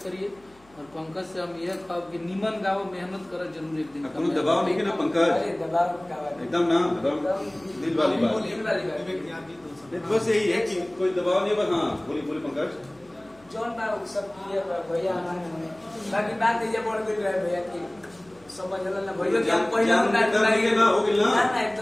करिए और पंकज से हम यह कहब कि निमन गाओ मेहनत कर जरूर एक दिन कोनो दबाव नहीं है ना पंकज अरे दबाव का बात एकदम ना एकदम दिल वाली बात बस यही है कि कोई दबाव नहीं बस हाँ बोली पंकज जौन बा सब क्लियर बा भैया हमारे बाकी बात ये बढ़ गई रहे भैया की समझला ना भैया कि हम पहले ना हो गेल ना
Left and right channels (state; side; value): noise; left; hum, 29 dB below the sound